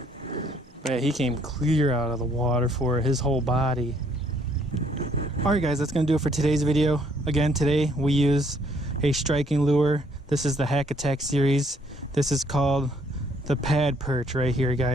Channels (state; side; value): normal; both; correlation 0.66